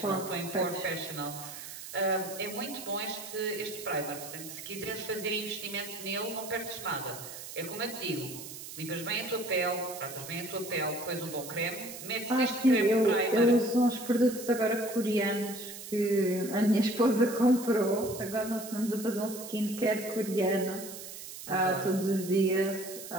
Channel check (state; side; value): noise; right; hiss, 11 dB below the sound